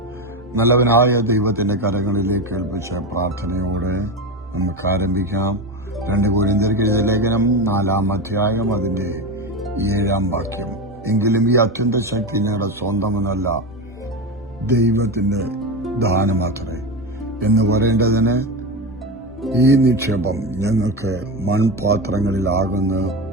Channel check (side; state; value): both; normal; correlation 0.19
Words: നല്ലവനായ ദൈവത്തിന്റെ കരങ്ങളിലേക്ക് ഏൽപ്പിച്ച പ്രാർത്ഥനയോടെ നമുക്ക് ആരംഭിക്കാം. 2 കൊരിന്ത്യർക്ക് എഴുതിയ ലേഖനം 4-ാം അധ്യായം അതിന്റെ 7-ാം വാക്യം. എങ്കിലും ഈ അത്യന്ത ശക്തി ഞങ്ങളുടെ സ്വന്തമെന്നല്ല, ദൈവത്തിന്റെ ദാനമാത്രേ എന്ന് പറയേണ്ടതിന് ഈ നിക്ഷേപം ഞങ്ങൾക്ക് മൺപാത്രങ്ങളിലാകുന്നു